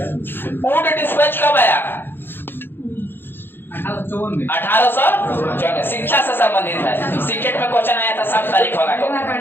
ऊंट डिस्पैच कब आया? 1854। शिक्षा से संबंधित है, सीटेट में क्वेश्चन आया था 7 तारीख होगा।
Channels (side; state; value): right; late; 0.10 ms